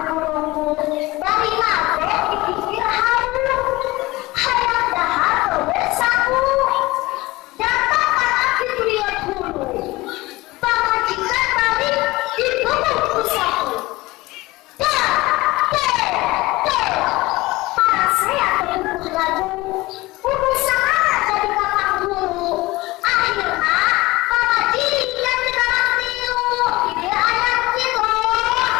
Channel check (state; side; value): quieter; right; 20.4 dB